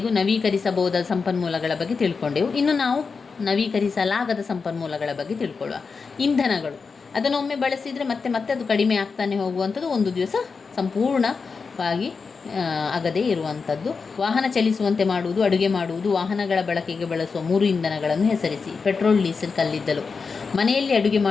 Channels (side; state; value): right; quieter; 5.0 dB